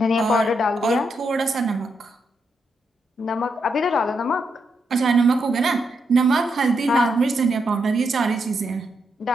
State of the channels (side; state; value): both; normal; correlation 0.81